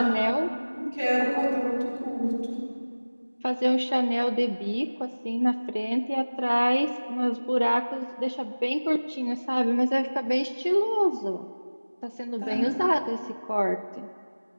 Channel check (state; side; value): inverted; both; correlation -1.00